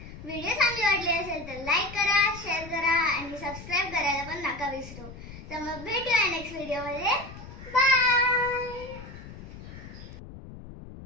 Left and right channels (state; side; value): noise; left; rumble, 14 dB below the sound